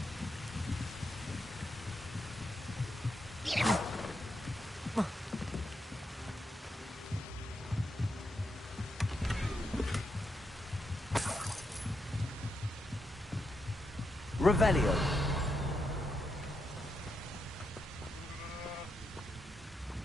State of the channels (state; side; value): normal; both; correlation 0.83